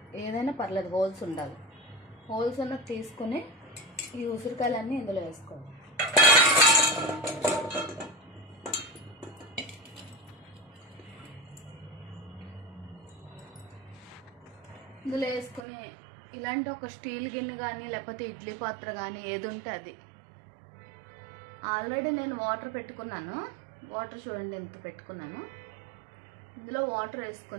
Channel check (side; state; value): left; drops out; at 15.6 s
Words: ఏదైనా పర్లేదు, హోల్స్ ఉండాలి. హోల్స్ ఉన్నది తీసుకుని ఈ ఉసిరికాయలన్నీ ఇందులో వేసుకోవాలి. ఇందులో వేసుకుని ఇలాంటి ఒక స్టీల్ గిన్నె కానీ లేకపోతే ఇడ్లీ పాత్ర కానీ ఏది ఉంటే అది. ఆల్రెడీ నేను వాటర్ పెట్టుకున్నాను. వాటర్ చూడండి ఎంత పెట్టుకున్నాను. ఇందులో వాటర్